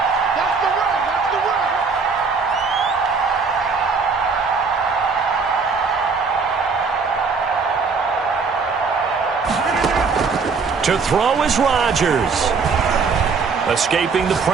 To throw is Rodgers. Escaping the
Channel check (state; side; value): quieter; left; 5.0 dB